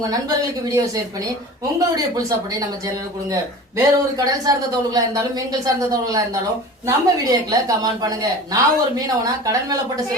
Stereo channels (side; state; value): both; normal; correlation 0.37